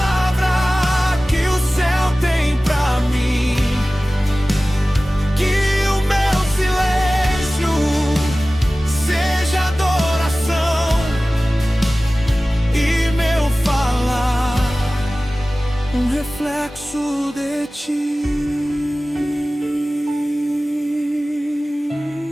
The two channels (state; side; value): normal; both; correlation 0.97